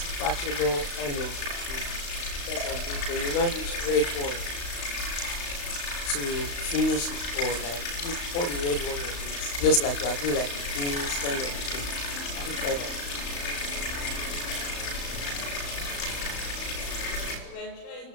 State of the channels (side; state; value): right; late; 35 ms